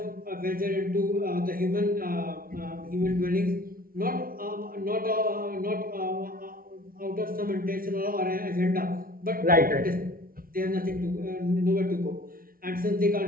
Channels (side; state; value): left; late; 0.42 ms